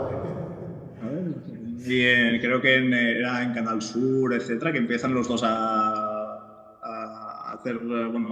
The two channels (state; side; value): identical; both; correlation 1.00